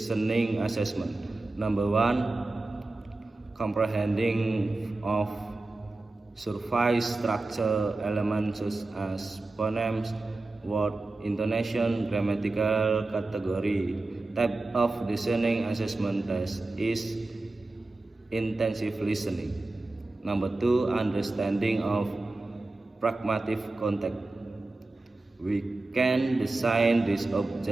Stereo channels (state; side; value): quieter; left; 3.1 dB